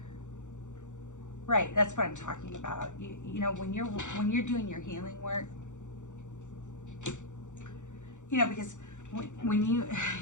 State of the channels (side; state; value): right; late; 0.85 ms